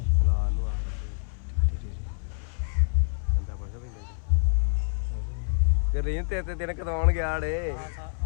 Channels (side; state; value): right; silent; 60 dB below the other